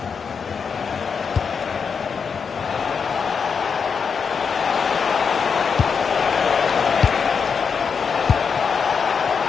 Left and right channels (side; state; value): right; quieter; 6.0 dB